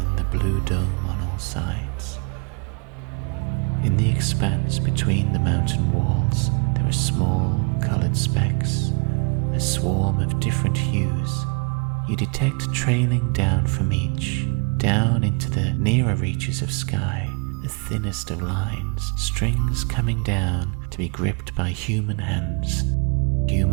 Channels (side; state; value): left; quieter; 35.5 dB